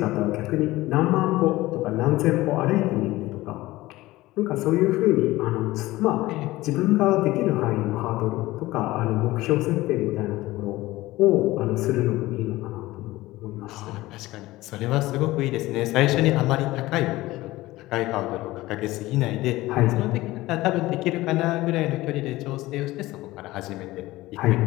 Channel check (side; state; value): right; quieter; 18.1 dB